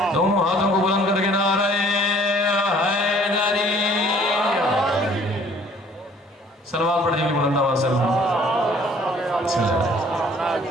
دونوں ہاتھوں کو بلند کر کے نعرہ حیدری، صلوات پڑھ دیجیے بلند آواز سے۔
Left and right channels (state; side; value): normal; both; correlation 0.56